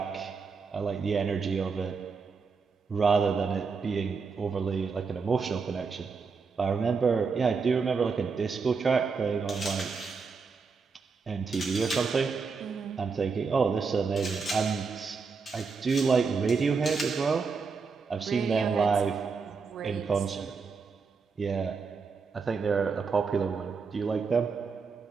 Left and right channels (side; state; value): left; quieter; 5.1 dB